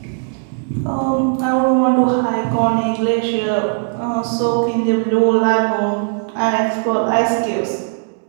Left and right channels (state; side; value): silent; left; 63 dB below the other